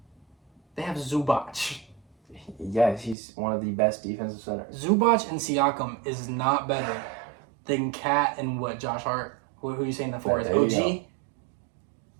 They have Zubac. Yes, he's one of the best defensive centers. Zubac and Siakam is not better than Cat and Josh Hart? Who are you saying that for? Is There you OG? go.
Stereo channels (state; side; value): drops out; left; at 3.2 s